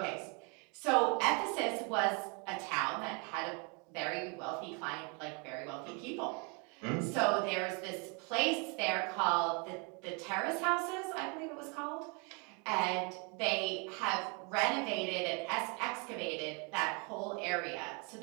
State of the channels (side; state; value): left; quieter; 33.5 dB